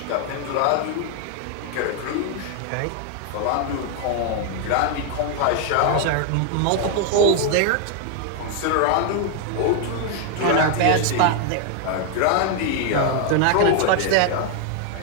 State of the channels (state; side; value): different; both; correlation 0.00